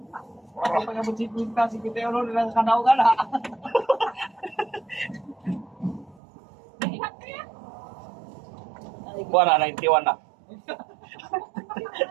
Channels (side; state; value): left; drops out; at 6.2 s